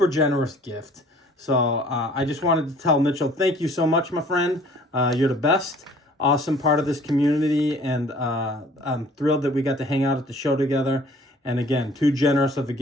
generous gift. So I just wanted to tell Mitchell, thank you so much, my friend. You're the best. Awesome part of this community, and I'm thrilled that we got to hang out at the show together. And again, too generous of a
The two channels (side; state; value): both; normal; correlation 0.53